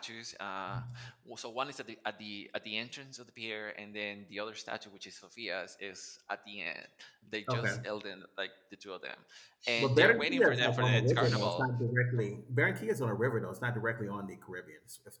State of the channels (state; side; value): identical; both; correlation 1.00